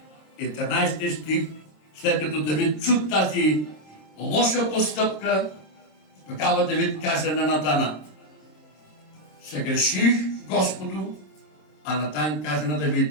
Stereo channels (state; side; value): late; right; 26 ms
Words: И в 13 стих, след като Давид чу тази лоша постъпка, тогава Давид каза на Натана: съгреших Господу. А Натан каза на